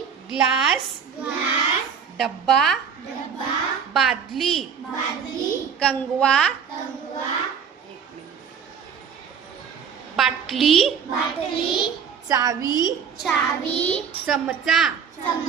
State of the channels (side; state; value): left; quieter; 7.0 dB